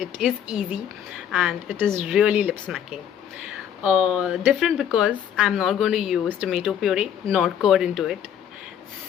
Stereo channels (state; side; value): quieter; right; 9.3 dB